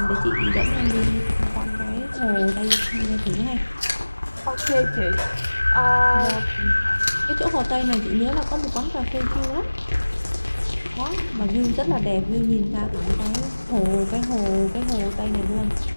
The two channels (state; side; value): inverted; both; correlation -1.00